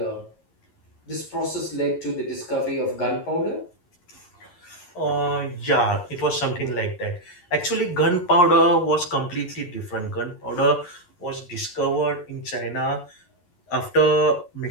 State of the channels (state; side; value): late; right; 11 ms